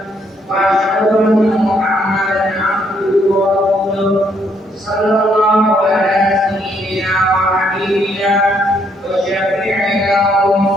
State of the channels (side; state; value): both; normal; correlation 0.71